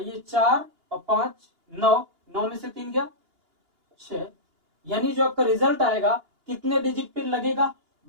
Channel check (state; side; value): late; left; 2.8 ms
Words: ये 4 और 5 9, 9 में से 3 गया 6। यानी जो आपका रिजल्ट आएगा कितने डिजिट पे लगेगा